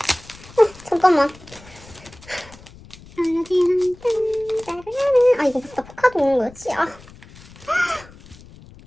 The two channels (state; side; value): noise; left; rumble, 21 dB below the sound